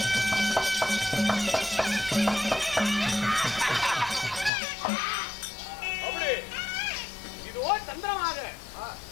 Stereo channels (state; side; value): drops out; right; at 4.5 s